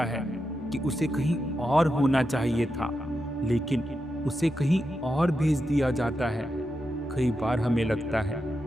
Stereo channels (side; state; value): both; normal; correlation 0.87